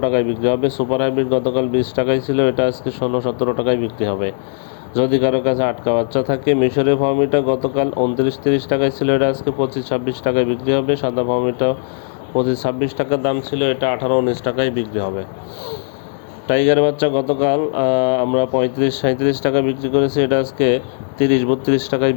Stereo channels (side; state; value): right; silent; digital silence